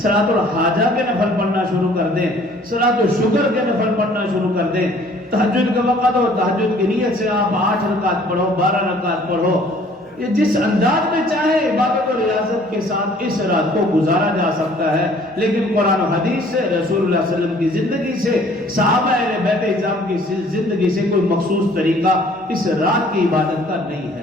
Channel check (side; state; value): both; normal; correlation 0.55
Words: الحاجہ کے نفل پڑھنا شروع کر دیں، صلاۃ الشکر کے نفل پڑھنا شروع کر دیں، تہجد کا وقت ہو تہجد کی نیت سے آپ 8 رکعت پڑھو، 12 رکعت پڑھو، یہ جس انداز میں چاہے عبادت اور ریاضت کے ساتھ اس رات کو گزارا جا سکتا ہے، لیکن قرآن و حدیث سے، رسول اللہ صلی اللہ علیہ وسلم کی زندگی سے، صحابہ اہل بیت اعظام کی زندگی سے کوئی مخصوص طریقہ اس رات کی عبادت کا نہیں